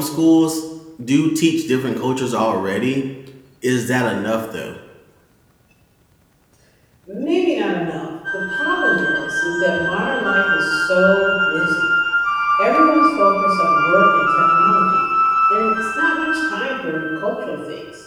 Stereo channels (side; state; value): both; identical; correlation 1.00